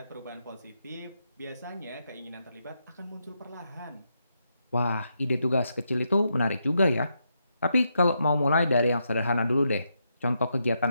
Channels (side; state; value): both; inverted; correlation -0.82